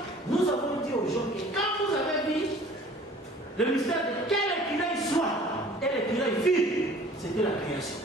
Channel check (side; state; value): both; normal; correlation 0.49